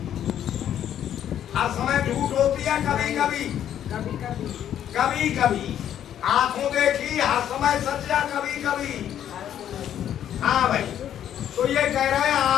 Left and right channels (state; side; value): quieter; right; 10.3 dB